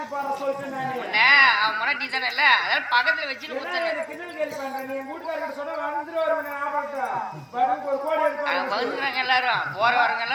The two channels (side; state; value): both; identical; correlation 1.00